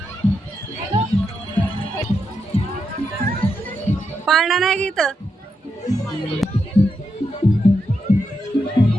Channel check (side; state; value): both; normal; correlation 0.84